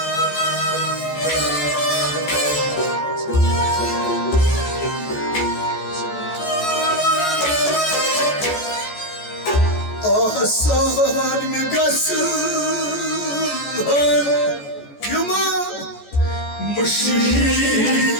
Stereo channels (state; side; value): late; right; 14 ms